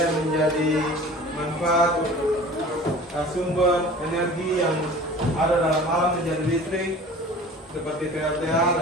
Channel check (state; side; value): normal; both; correlation 0.42